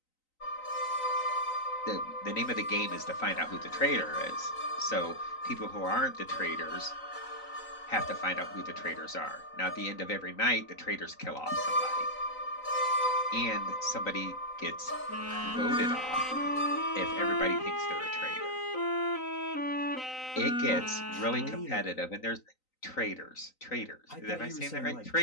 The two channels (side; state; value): right; late; 3.9 ms